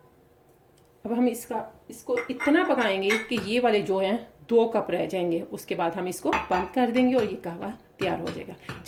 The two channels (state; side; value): identical; both; correlation 1.00